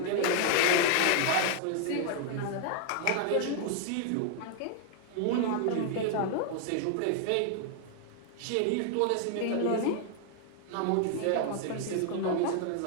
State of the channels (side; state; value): both; different; correlation 0.00